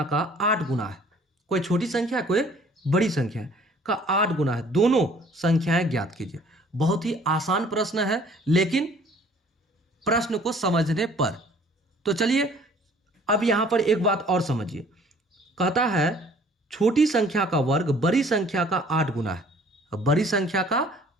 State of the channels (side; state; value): both; normal; correlation 0.55